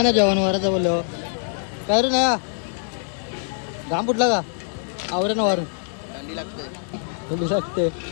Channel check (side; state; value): right; silent; digital silence